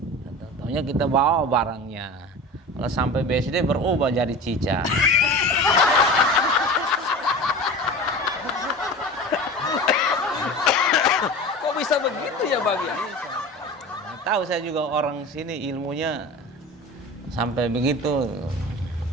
Tahu-tahunya kita bawa barangnya. Kalau sampai BSD berubah jadi cica. Kok bisa begitu ya bang ya? Tahu saya juga orang sini ilmunya sampai begitu.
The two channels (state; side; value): normal; both; correlation 0.34